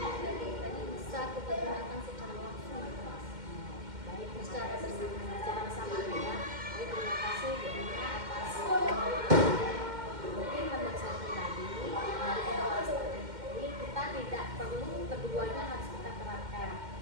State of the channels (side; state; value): left; late; 2.1 ms